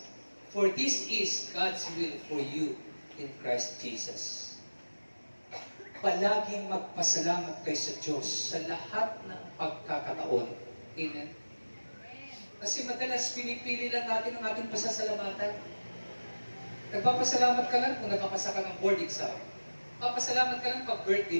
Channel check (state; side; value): inverted; both; correlation -1.00